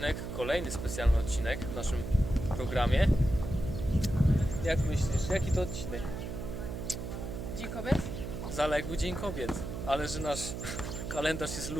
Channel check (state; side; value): noise; right; hum, 6 dB below the sound